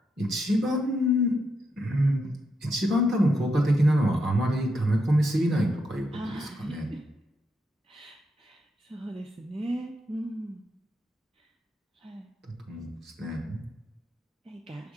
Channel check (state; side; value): normal; both; correlation 0.81